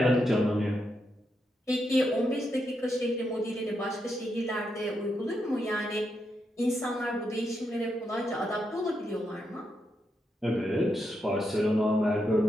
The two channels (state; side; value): normal; both; correlation 0.83